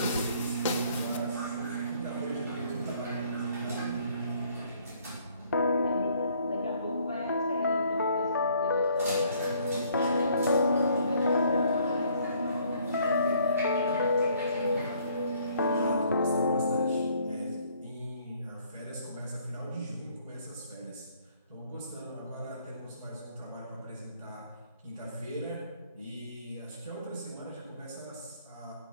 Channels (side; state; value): both; inverted; correlation -0.62